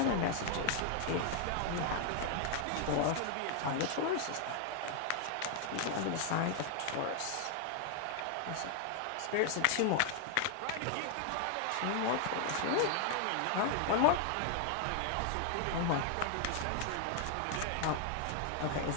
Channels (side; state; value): both; different; correlation 0.00